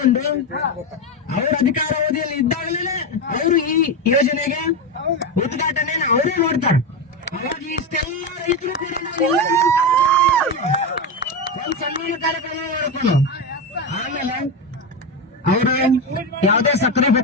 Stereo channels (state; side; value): normal; both; correlation 0.13